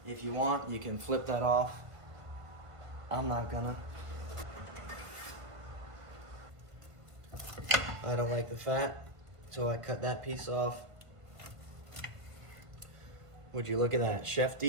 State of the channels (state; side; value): late; left; 1.5 ms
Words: If you want, you can flip that off. I'm not gonna. I don't like the fat, so I cut that piece off. Would you look at that? Chef